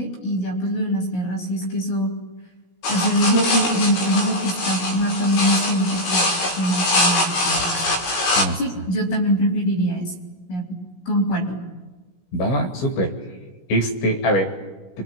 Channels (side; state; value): right; late; 17 ms